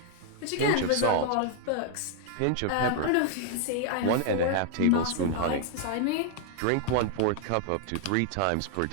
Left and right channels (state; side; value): different; both; correlation 0.00